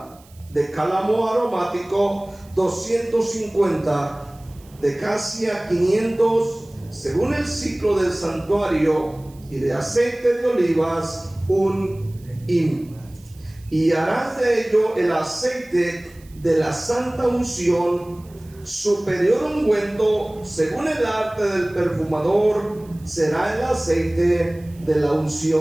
de cálamo aromático 250, de casia 500, según el ciclo del santuario, y de aceite de olivas 1 hin. Y harás de ello el aceite de la santa unción, superior ungüento, según el arte del perfumador, será el aceite de la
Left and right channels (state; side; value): noise; right; hiss, 27 dB below the sound